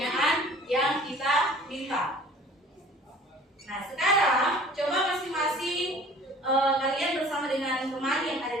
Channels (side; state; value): both; normal; correlation 0.48